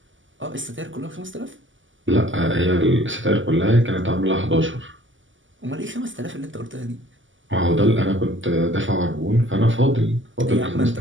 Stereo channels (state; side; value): late; left; 0.56 ms